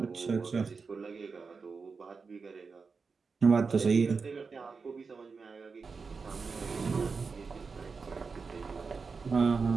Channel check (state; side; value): quieter; left; 4.9 dB